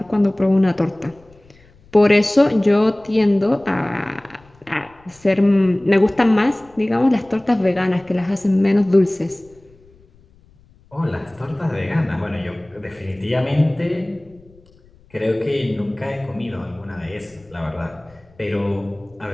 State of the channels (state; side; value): noise; left; rumble, 29 dB below the sound